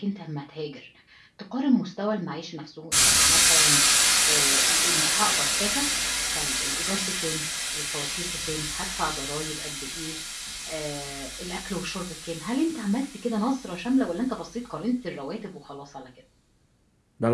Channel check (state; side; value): identical; both; correlation 1.00